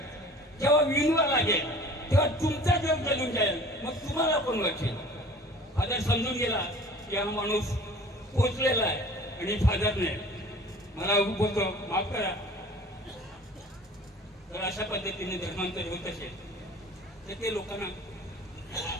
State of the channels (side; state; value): both; normal; correlation 0.45